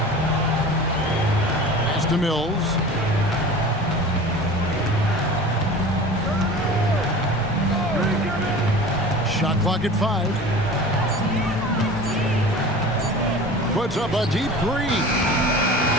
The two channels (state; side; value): normal; both; correlation 0.38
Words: Pass to Mills. Shot clock at 5. Puts up a deep 3.